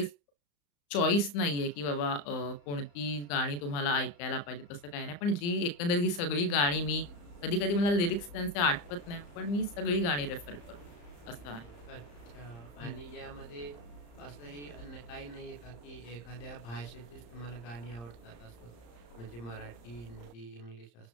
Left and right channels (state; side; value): late; right; 34 ms